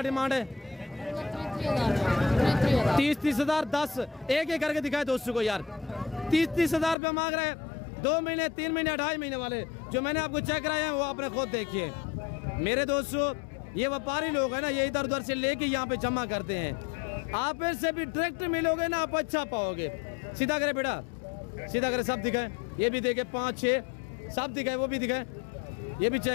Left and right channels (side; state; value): right; drops out; at 7.0 s